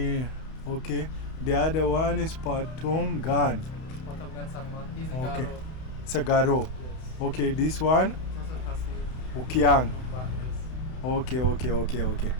The other one is Patongan. Patongan Sangma. He's a Okay. Garo. Sagaro. Yes. Okay, this one. Also Khasi. Kiang. Nongbah, yes. Okay.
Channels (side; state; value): right; late; 31 ms